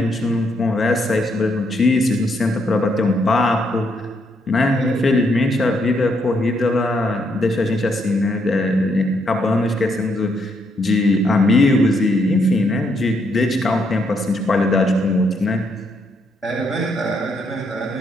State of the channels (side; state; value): both; normal; correlation 0.75